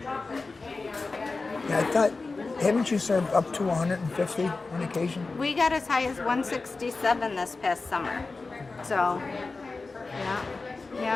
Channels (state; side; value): quieter; right; 3.8 dB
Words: Yeah, I thought, haven't you served up to 150 on occasion? We got as high as 167 this past summer. So,